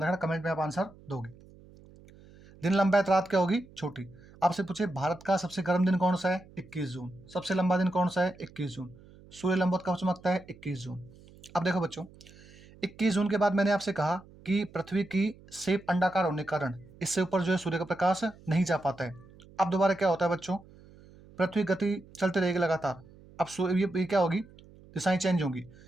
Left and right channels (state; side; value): noise; right; hum, 23 dB below the sound